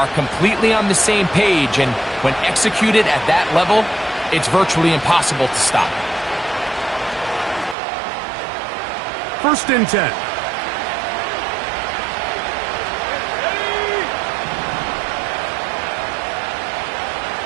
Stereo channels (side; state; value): left; drops out; at 7.8 s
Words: completely on the same page, and when executed at that level, it's virtually impossible to stop. First and 10.